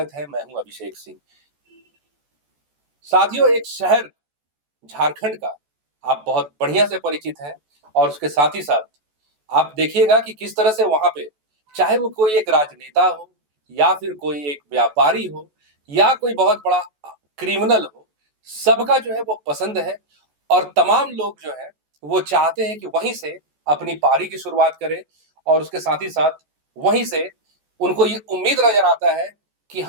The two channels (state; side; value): late; left; 14 ms